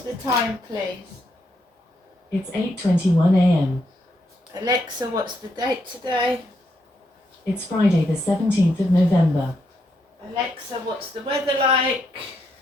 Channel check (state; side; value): normal; both; correlation 0.78